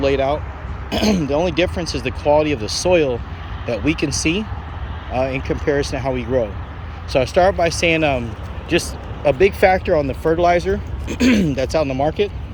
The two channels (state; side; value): identical; both; correlation 1.00